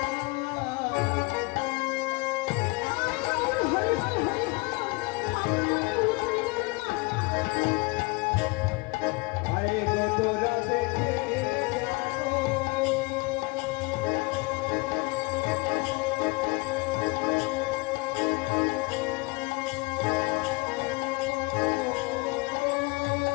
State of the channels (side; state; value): right; quieter; 26.7 dB